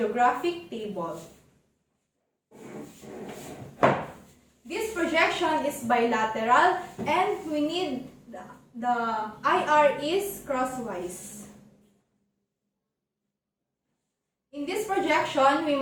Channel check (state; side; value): identical; both; correlation 1.00